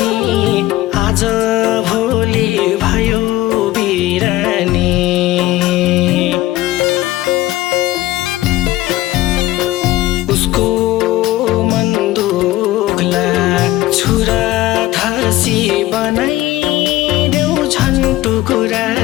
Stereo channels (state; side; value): quieter; right; 16.4 dB